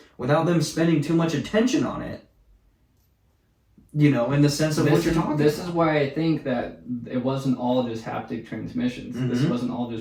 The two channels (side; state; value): both; identical; correlation 1.00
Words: without them spending too much attention on it. You know, in the sense of what you're talking This about. is why I think that it wasn't all just haptic transmissions. This Mhm. wasn't all